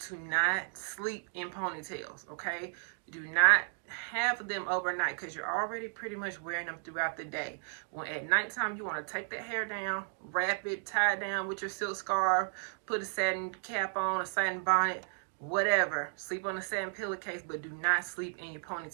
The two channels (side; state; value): left; silent; 55 dB below the other